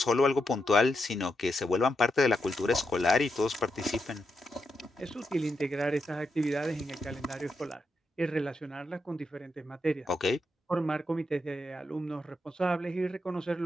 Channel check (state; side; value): normal; both; correlation 0.84